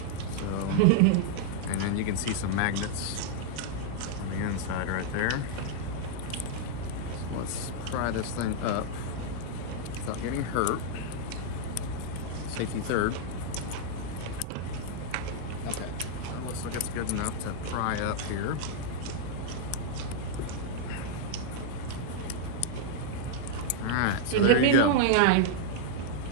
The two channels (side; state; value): both; different; correlation 0.00